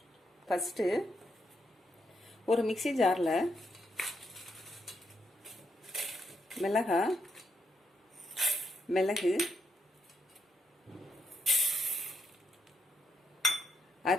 ஃபர்ஸ்ட் ஒரு மிக்ஸி ஜாரில் மிளகு,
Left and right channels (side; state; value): both; normal; correlation 0.79